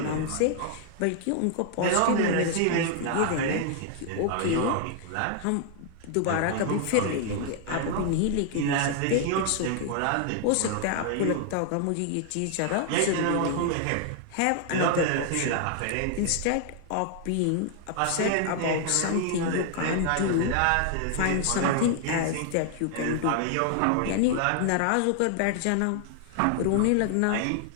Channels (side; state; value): both; different; correlation 0.00